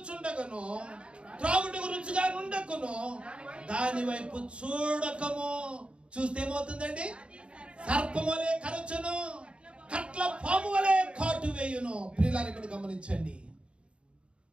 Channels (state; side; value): late; left; 0.057 ms